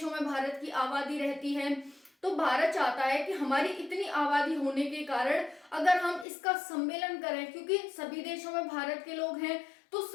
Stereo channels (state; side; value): drops out; right; at 6.2 s